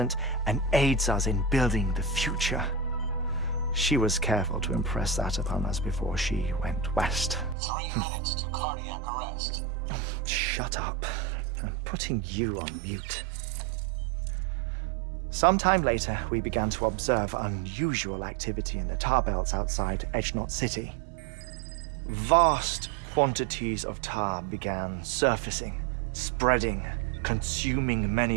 and aids us in building the future. She was careful to impress that upon us before she went west. 3 minutes to cardiac arrest. Shut up. I'm putting you on mute. Sometime later, we began to observe unusual activity in the tar belts outside Edgenot City. Vast quantities of tar began surfacing, spreading, consuming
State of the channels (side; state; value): left; drops out; at 7.6 s